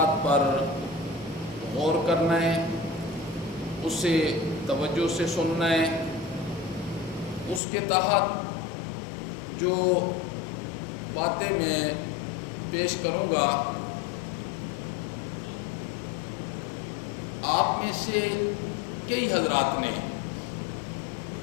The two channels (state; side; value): drops out; right; at 7.6 s